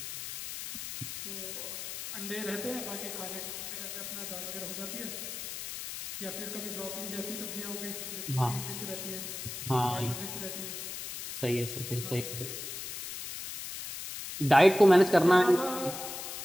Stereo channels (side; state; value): left; noise; hiss, 7 dB below the sound